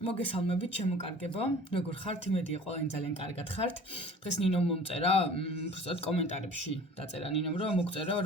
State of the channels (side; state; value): both; normal; correlation 0.45